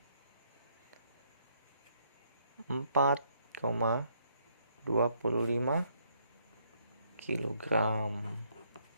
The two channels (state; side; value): inverted; both; correlation -0.70